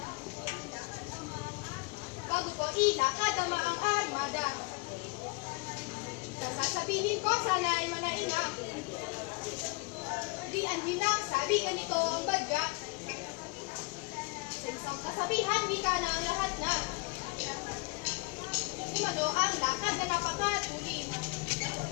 Bago ko ilakad ang maang armada. Sasabihin ko sana ay manainga. Di ang hinang sabi ganito ang badya. Sa isang kasabihan, wika na ang lahat na. Kumano ang lakad na napakatuli.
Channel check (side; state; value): right; quieter; 27.9 dB